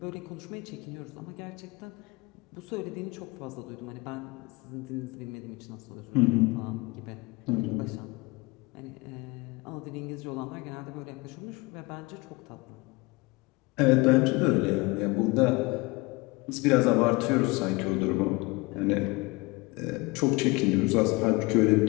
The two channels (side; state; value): right; quieter; 24.7 dB